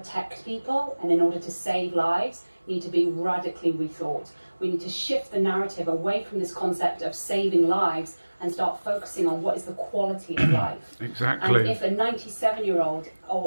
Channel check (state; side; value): inverted; both; correlation -1.00